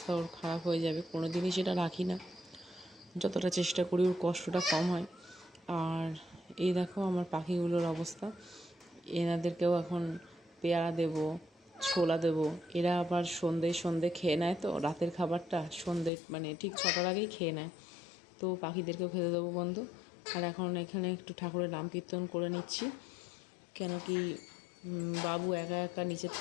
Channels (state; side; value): drops out; right; at 16.1 s